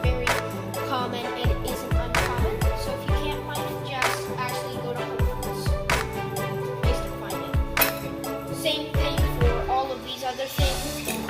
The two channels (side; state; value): both; identical; correlation 1.00